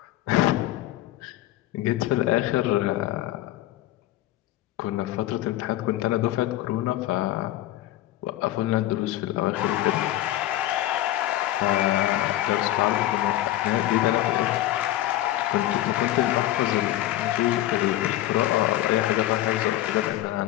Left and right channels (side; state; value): right; quieter; 14.7 dB